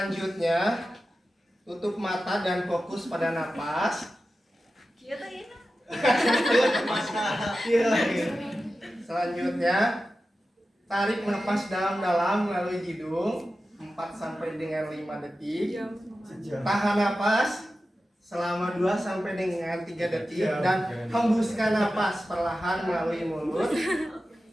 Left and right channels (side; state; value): both; normal; correlation 0.93